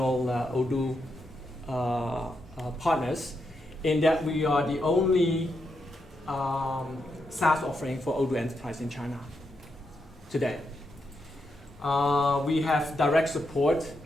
Odoo partners, in that we are the only SaaS offering for Odoo Enterprise in China today. We have direct support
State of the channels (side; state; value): both; normal; correlation 0.83